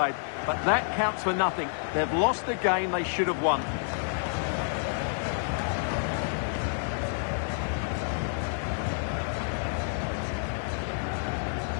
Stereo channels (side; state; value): right; silent; 59 dB below the other